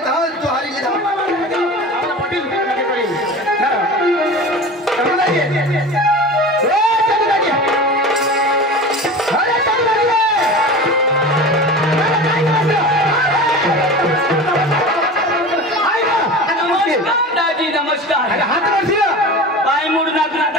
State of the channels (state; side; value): normal; both; correlation 0.33